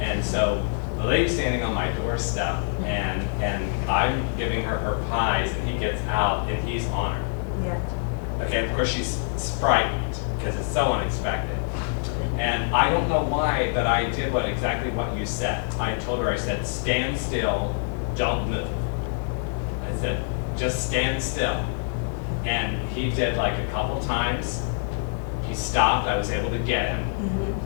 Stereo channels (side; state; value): right; silent; 61 dB below the other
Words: so the lady's standing on my doorstep, and I'm giving her pies, and he gets out, and he's on her. Yeah. Okay, of course she's frightened, because it's so unexpected. And I don't know why, but I did exactly what you said. I told her, I said, stand still, don't move. I said, just stand still. And he did like a couple times. He stopped, I was able to get him.